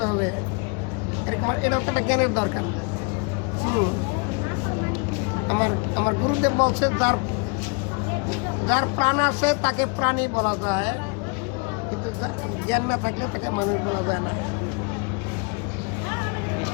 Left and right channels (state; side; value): quieter; right; 33.5 dB